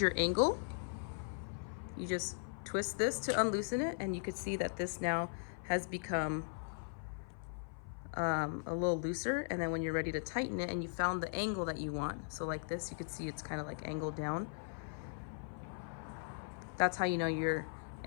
angle, you just twist this to unloosen it, and you can see that this now has become a little looser. And then when you're ready to tighten it and you found the angle that you want, so like this, you can see it's kind of like angled down. That's how you know your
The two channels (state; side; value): silent; right; 52 dB below the other